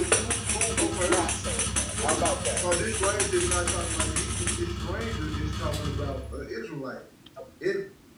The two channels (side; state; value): both; identical; correlation 1.00